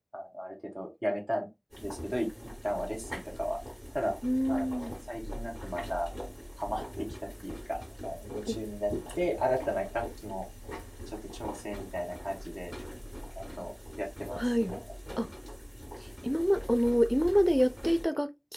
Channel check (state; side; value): identical; both; correlation 1.00